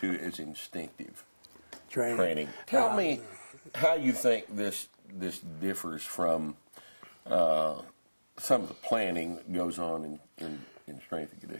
as instinctive training. Tell me how you think this differs from some of the planning that goes on in strength and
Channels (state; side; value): inverted; both; correlation -1.00